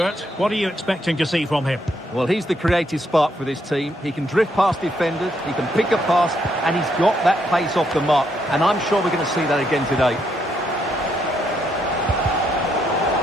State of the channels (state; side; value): normal; both; correlation 0.75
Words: What are you expecting to see from him? Well, he's the creative spark for this team. He can drift past defenders, he can pick a pass, and he's got that pace off the mark. And I'm sure we're going to see that again today.